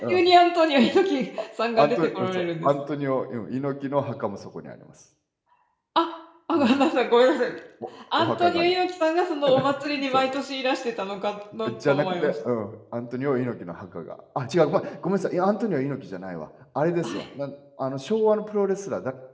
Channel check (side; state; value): both; identical; correlation 1.00